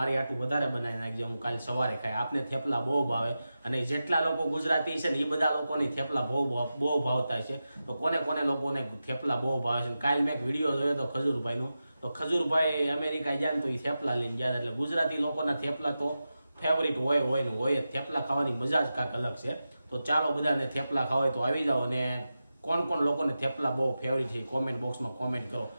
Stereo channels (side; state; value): both; inverted; correlation -0.92